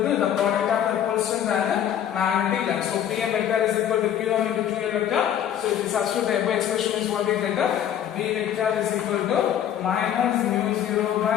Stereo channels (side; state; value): right; quieter; 10.0 dB